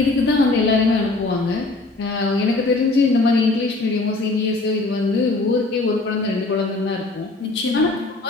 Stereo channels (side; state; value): right; quieter; 3.2 dB